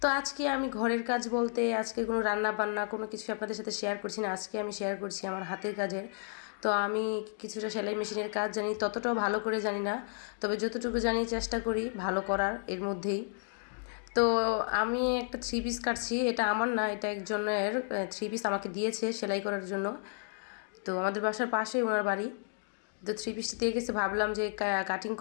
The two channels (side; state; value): right; silent; 56 dB below the other